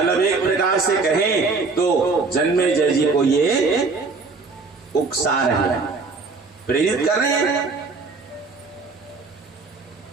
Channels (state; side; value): quieter; left; 4.2 dB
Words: एक प्रकार से कहें तो जन्मेजय जी को ये उकसा रहे हैं, प्रेरित कर रहे हैं।